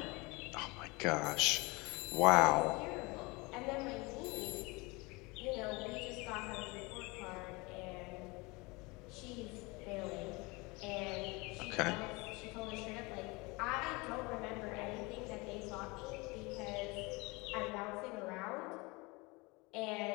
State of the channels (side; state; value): right; quieter; 25.6 dB